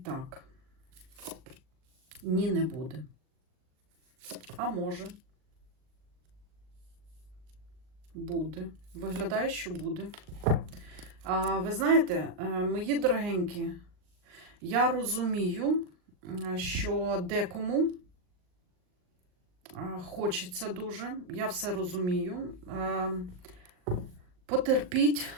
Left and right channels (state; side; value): late; left; 39 ms